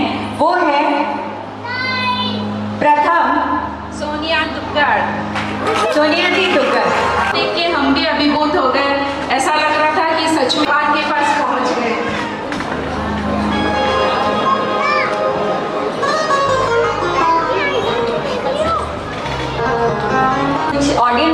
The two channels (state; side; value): identical; both; correlation 1.00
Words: वो है प्रथम सोनिया दुग्गड़। सोनिया जी दुग्गड़ देख के हम भी अभिभूत हो गए। ऐसा लग रहा था कि सच में बात के पास पहुंच गए।